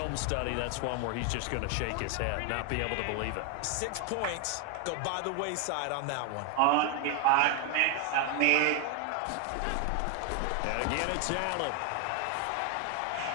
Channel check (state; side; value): different; both; correlation 0.01